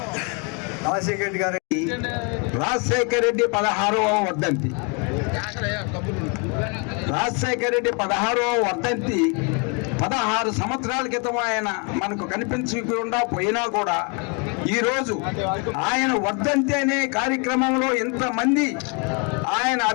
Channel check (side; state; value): right; quieter; 34.0 dB